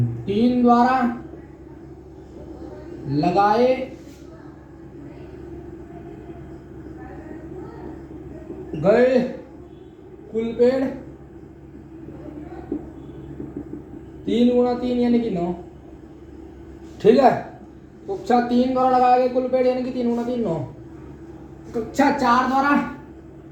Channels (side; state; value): both; identical; correlation 1.00